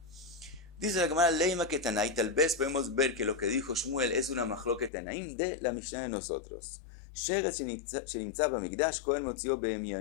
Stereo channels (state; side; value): drops out; right; at 4.9 s